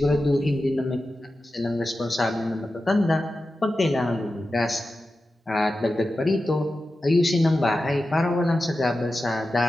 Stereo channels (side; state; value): both; normal; correlation 0.92